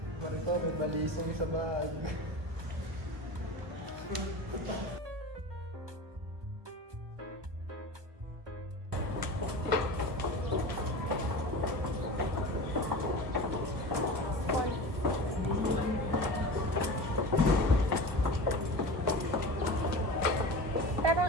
Marito, may balisong sa bag.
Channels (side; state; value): left; late; 1.0 ms